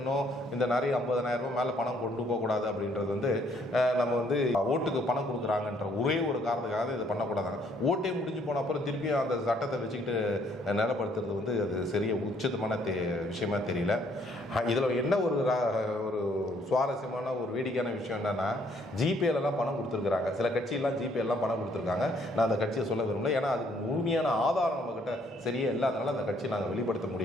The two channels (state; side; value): normal; both; correlation 0.66